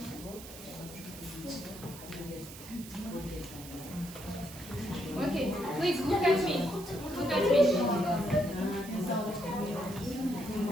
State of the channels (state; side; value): noise; right; hiss, 15 dB below the sound